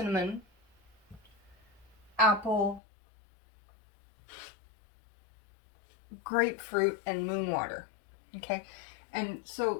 apple, grapefruit, and moon water, okay? And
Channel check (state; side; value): drops out; right; at 2.8 s